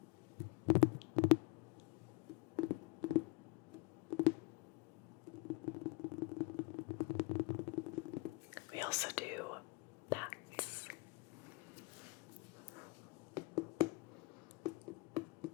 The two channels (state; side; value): quieter; right; 25.0 dB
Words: We also do bats.